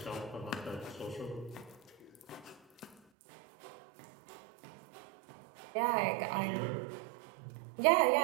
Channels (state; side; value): drops out; left; at 3.0 s